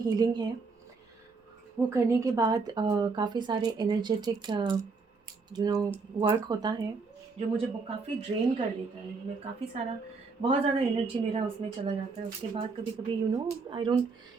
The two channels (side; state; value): left; quieter; 4.4 dB